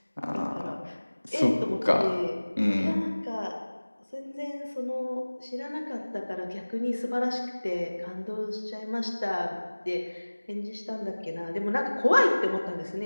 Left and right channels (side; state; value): both; inverted; correlation -1.00